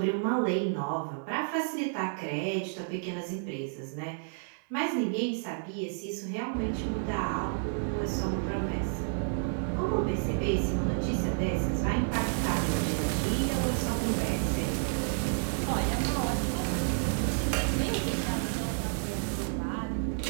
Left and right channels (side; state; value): left; silent; digital silence